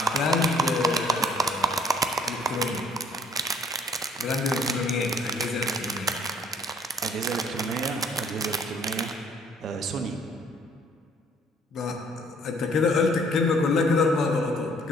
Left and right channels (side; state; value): both; normal; correlation 0.60